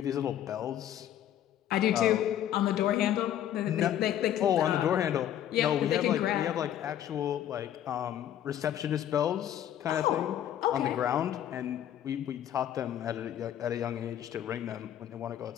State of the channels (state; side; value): quieter; right; 11.0 dB